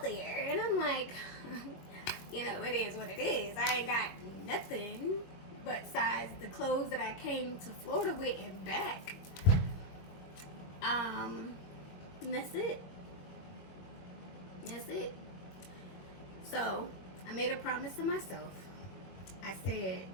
there? And I'm like, it is what it is. I ain't got nothing besides the clothes that I came to Florida with and back. And that's it. So I made a promise to myself. I said,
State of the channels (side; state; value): right; late; 21 ms